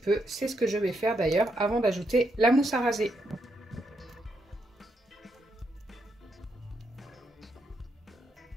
c'est ce que je vais faire d'ailleurs avant d'ajouter la mousse à raser.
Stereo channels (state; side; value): normal; both; correlation 0.79